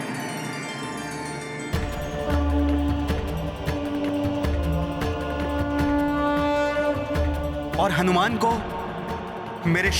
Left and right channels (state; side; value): identical; both; correlation 1.00